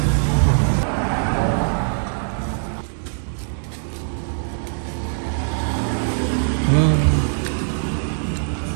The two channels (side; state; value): left; silent; 64 dB below the other